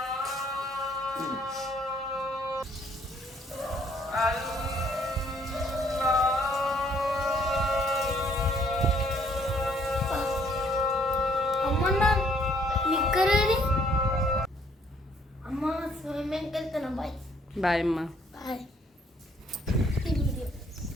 బాయ్ అమ్మా. బాయ్.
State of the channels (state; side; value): normal; both; correlation 0.65